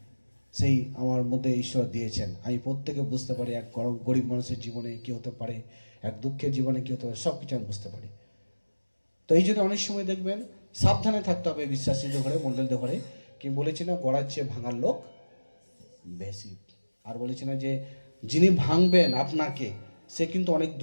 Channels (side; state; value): both; inverted; correlation -1.00